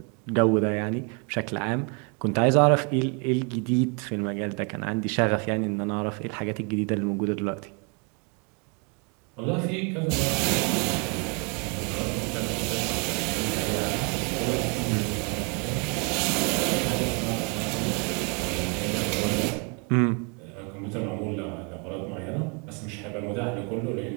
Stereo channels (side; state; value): left; quieter; 34.3 dB